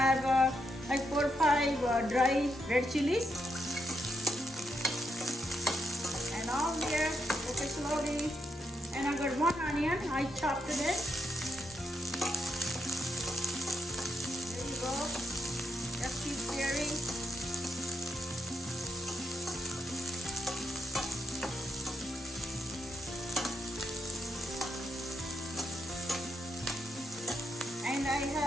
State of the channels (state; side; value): normal; both; correlation 0.81